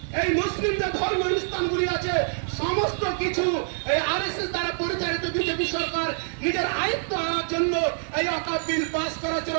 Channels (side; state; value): left; silent; digital silence